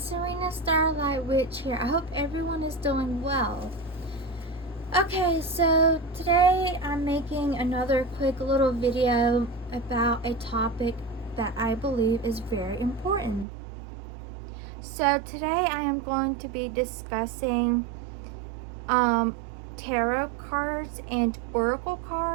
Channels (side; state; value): left; drops out; at 13.5 s